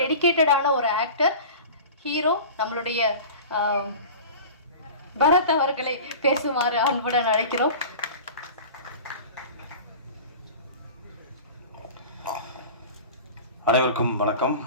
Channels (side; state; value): both; inverted; correlation -0.36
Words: ஒரு ஆக்டர், ஹீரோ, நம்மளுடைய பரத் அவர்களை பேசுமாறு அன்புடன் அழைக்கிறோம். அனைவருக்கும் வணக்கம்.